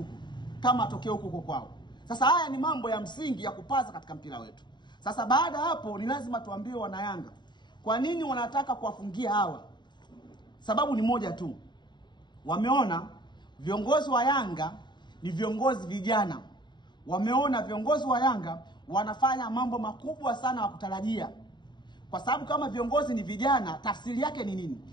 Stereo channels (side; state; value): right; late; 0.22 ms